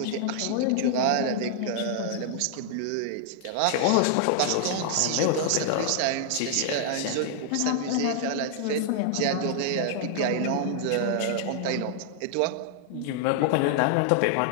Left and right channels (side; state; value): both; different; correlation 0.00